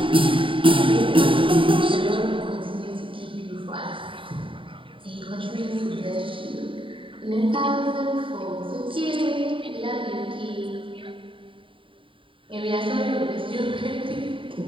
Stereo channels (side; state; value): left; late; 0.25 ms